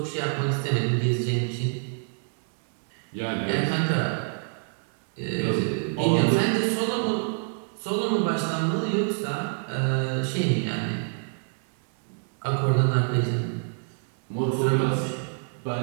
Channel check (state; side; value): silent; left; 60 dB below the other